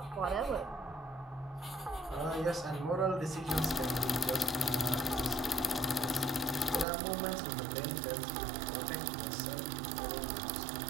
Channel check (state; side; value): drops out; left; at 6.9 s